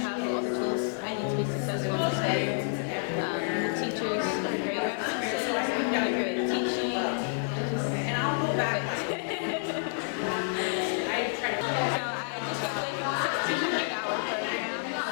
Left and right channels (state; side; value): silent; right; 58 dB below the other